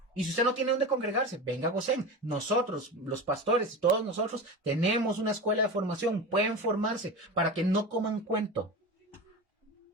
Y si usted no tiene dónde congregarse, venga a Gosén. Nosotros, los pastores, todos nosotros, tenemos una escuela de formación. Pueden formarse para que no coman cuento.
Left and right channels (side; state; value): both; normal; correlation 0.27